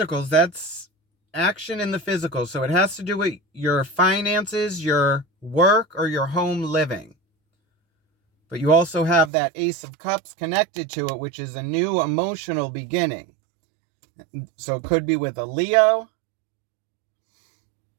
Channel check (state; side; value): drops out; left; at 9.3 s